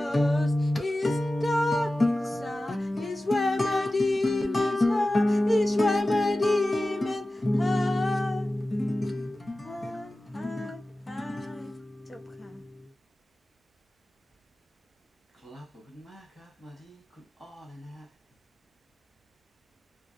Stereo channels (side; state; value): both; normal; correlation 0.95